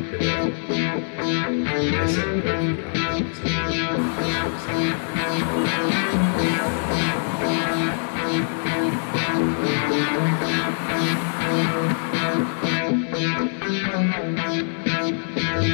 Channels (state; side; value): silent; right; 63 dB below the other